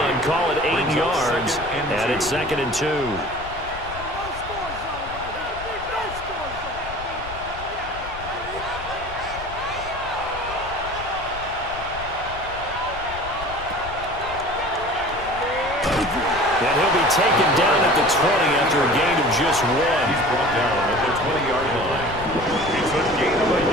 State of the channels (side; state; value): left; noise; rumble, 14 dB below the sound